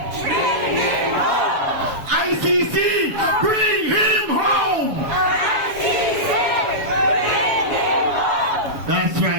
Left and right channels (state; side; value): late; left; 7.2 ms